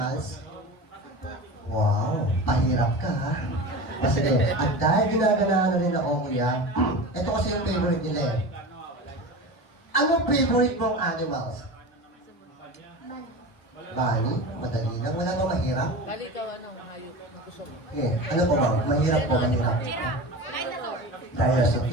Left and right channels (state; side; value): late; right; 1.1 ms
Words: Wow, pahirap ka ha. Kasi at dahil ginaganahan na rin ako kuya, ito kasi yung favorite nila eh. Anong favorite mong animals? Bunny? Madali lang, wala ba mahirap? Eh, ano po ba? Mahirap po, mahirap. Giraffe. Dinosaur. Dinosaur.